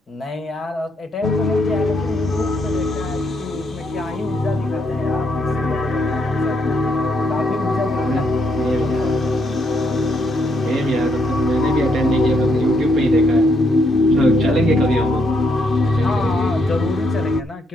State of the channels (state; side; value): normal; both; correlation 0.75